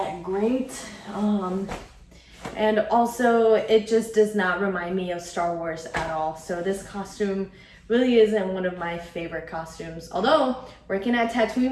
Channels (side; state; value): both; identical; correlation 1.00